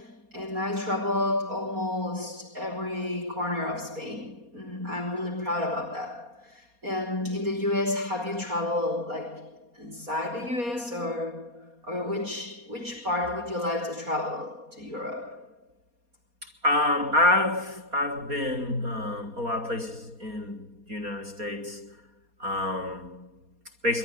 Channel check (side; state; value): left; late; 4.2 ms